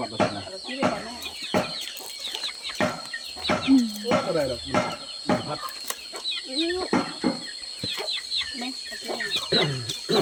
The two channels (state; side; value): identical; both; correlation 1.00